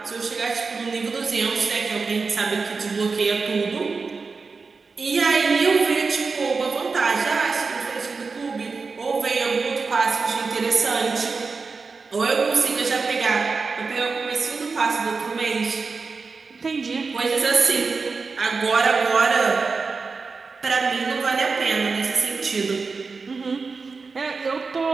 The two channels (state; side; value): quieter; left; 4.5 dB